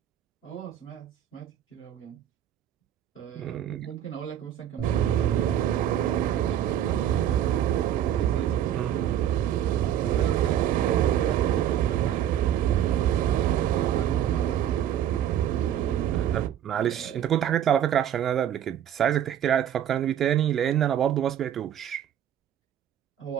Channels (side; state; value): left; quieter; 10.6 dB